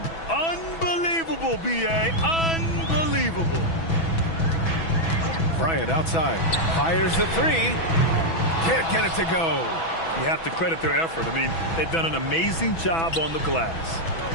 Unbelievable, B.A. Unbelievable. Bryant outside. Fires the 3. Can't get it to go. You have to credit their effort. I mean, they've done an amazing job on the glass.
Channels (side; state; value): right; late; 6.1 ms